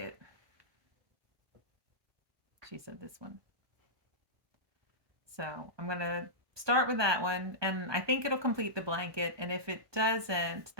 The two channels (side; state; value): left; late; 1.2 ms